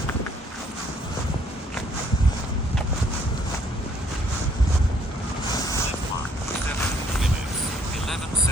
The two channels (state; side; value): normal; both; correlation 0.64